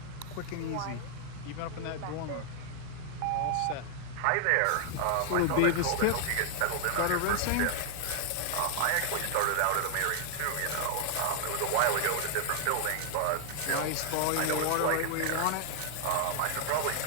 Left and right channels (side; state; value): both; different; correlation 0.00